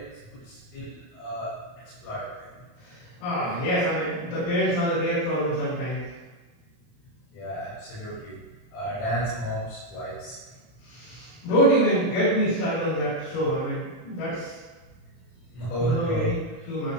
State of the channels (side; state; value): right; late; 40 ms